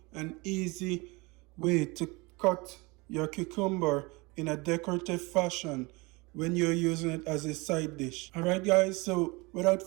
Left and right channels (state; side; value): quieter; left; 25.6 dB